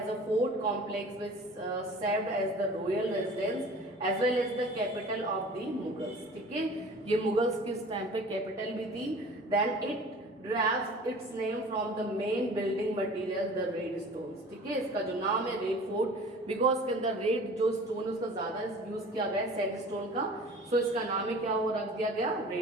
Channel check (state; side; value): normal; both; correlation 0.43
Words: a fort complex which served as the royal residence as well as the capital of the Mughals. ठीक है, ये Mughals किस time पे capital भी थी. Then it derives its name from the main building material, the red stones. ठीक है, इसका जो नाम है रेड फोर्ट, बिकॉज के अंदर रेड जो स्टोन है उसका ज्यादा यूज किया गया है सैंड स्टोन का, सो इसका नाम है क्या हो रख दिया गया,